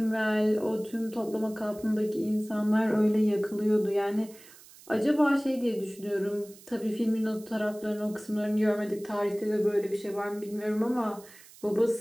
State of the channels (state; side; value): noise; right; hiss, 22 dB below the sound